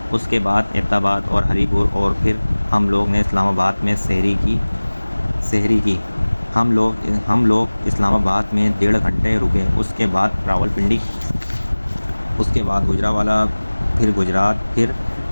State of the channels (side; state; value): both; inverted; correlation -1.00